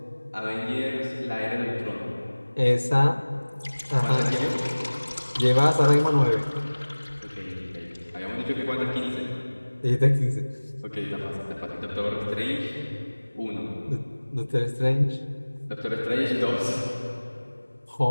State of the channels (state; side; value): inverted; both; correlation -1.00